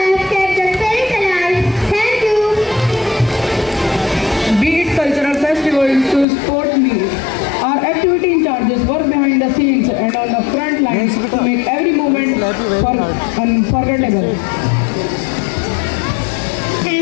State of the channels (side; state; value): right; drops out; at 6.2 s